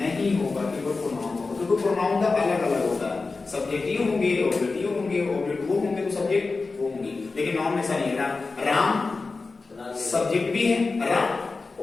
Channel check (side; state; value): right; quieter; 4.0 dB